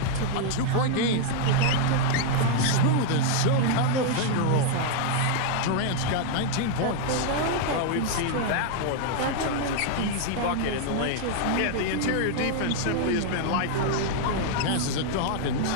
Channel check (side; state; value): both; different; correlation 0.00